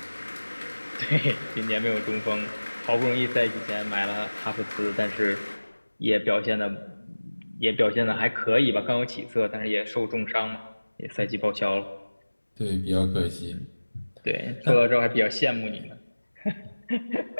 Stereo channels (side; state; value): both; inverted; correlation -1.00